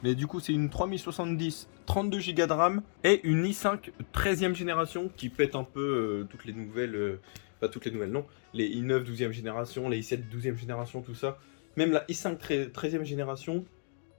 Mais du coup, c'est une 3070, 32 Go de RAM et une i5 13e génération qui pète un peu toutes les nouvelles... pas toutes les nouvelles, non. Les i9 12e génération, les i7 12e génération, tout ça. Même la i5 13e génération,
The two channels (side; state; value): right; silent; 56 dB below the other